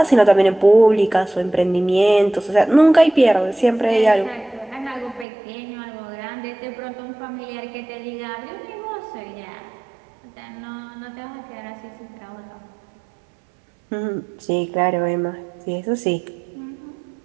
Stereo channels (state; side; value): drops out; left; at 5.2 s